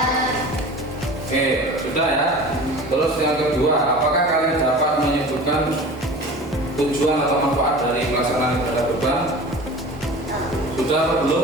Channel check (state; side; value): normal; both; correlation 0.38